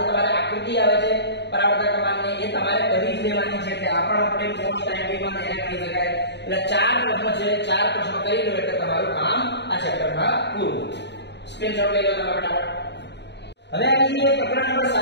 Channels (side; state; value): right; late; 0.50 ms